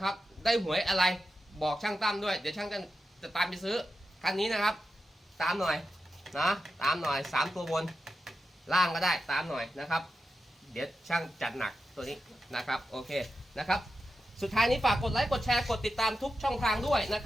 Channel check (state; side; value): normal; both; correlation 0.90